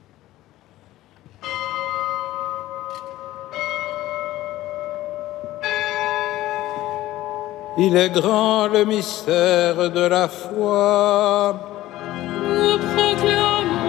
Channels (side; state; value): right; quieter; 15.7 dB